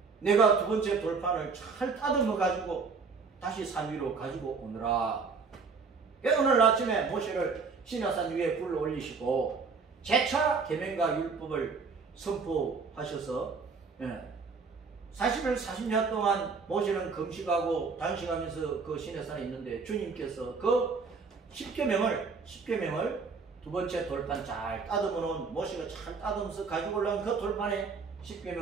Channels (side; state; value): left; quieter; 4.9 dB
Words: 내가 두 번째 돌판을 잘 따듬어 가지고 다시 산 위로 가지고 오느라. 오늘 아침에 모세를 시내산 위에 불러 올리시고 재차 계명과 율법을 선포하셔서 40일 40년 동안 모세는 금식하고 단식하면서 그 시내산에 있는데 주님께서 그 10계명을 두 번째 돌판 잘 따듬어 놓은 모세가 잘 따듬어서 가지고 올라온 그 돌판에